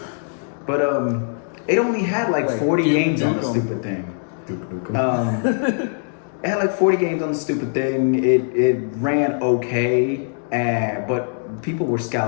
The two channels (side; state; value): right; silent; digital silence